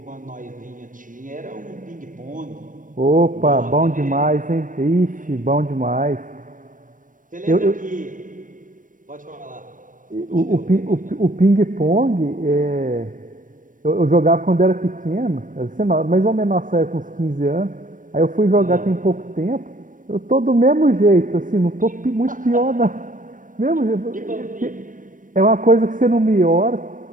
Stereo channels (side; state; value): left; late; 0.38 ms